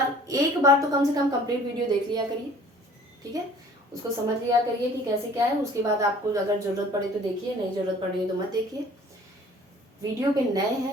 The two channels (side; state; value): both; normal; correlation 0.51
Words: तो कम से कम कंप्लीट वीडियो देख लिया करिए। ठीक है, उसको समझ लिया करिए कि कैसे क्या है, उसके बाद आपको अगर ज़रूरत पड़े तो देखिए, नहीं ज़रूरत पड़े तो मत देखिए। वीडियो पे नए